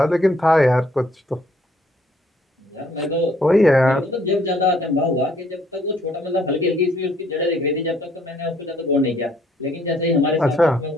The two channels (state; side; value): normal; both; correlation 0.64